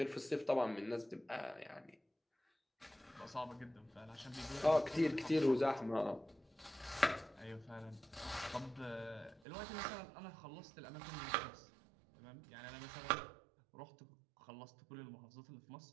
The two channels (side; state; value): left; drops out; at 9.4 s